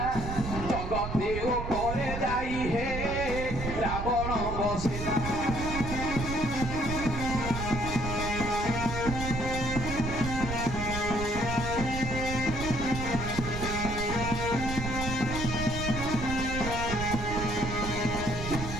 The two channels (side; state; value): right; noise; rumble, 5 dB below the sound